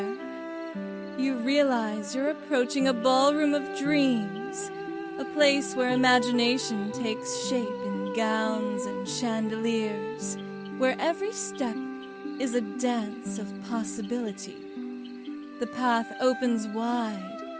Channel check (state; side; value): identical; both; correlation 1.00